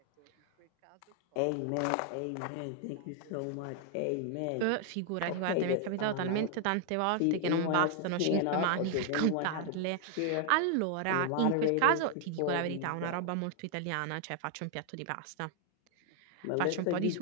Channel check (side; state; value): both; different; correlation 0.00